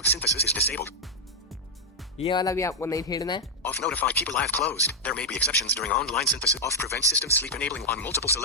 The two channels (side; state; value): both; normal; correlation -0.02